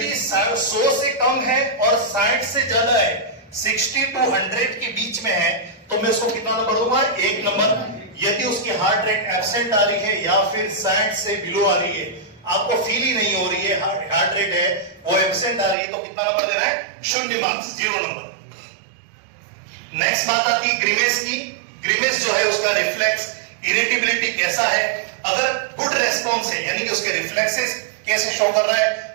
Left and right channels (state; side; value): drops out; left; at 15.8 s